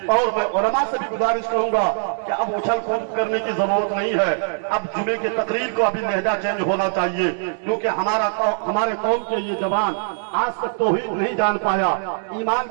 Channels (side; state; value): left; silent; digital silence